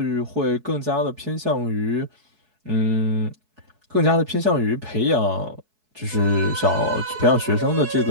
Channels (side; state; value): left; late; 4.7 ms